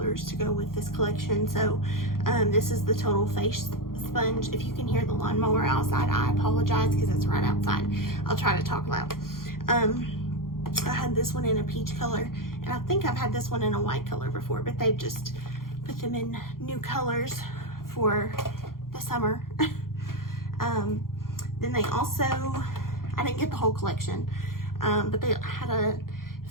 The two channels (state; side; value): late; right; 0.92 ms